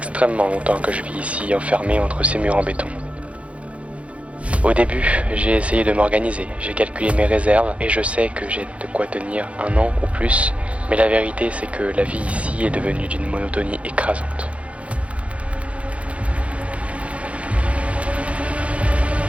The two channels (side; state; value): left; late; 0.063 ms